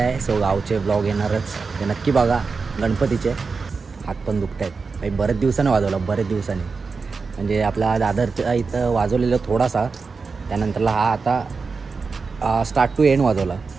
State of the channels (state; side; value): quieter; left; 4.7 dB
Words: सो गावचे ब्लॉग येणारच, ते नक्की बघा. गणपतीचे हात पण दुखत आहेत काही, बरेच दिवसाने वाजवलं, बरेच दिवसांनी. म्हणजे आपला दादरच्या इथं वाजवलेलं थोडासा, त्यानंतरला हा आता स्टार्ट टू एंड वाजवला